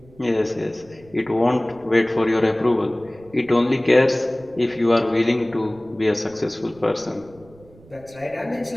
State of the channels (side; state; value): right; noise; rumble, 25 dB below the sound